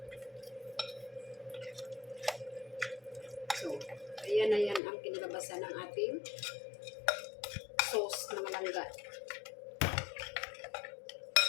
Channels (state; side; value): drops out; right; at 4.8 s